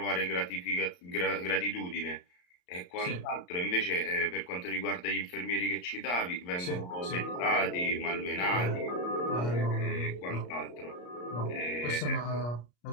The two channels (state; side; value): late; right; 34 ms